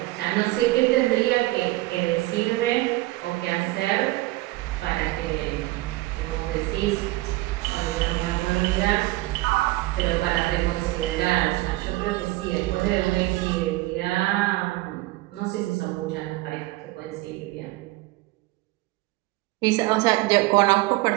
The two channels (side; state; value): left; quieter; 19.4 dB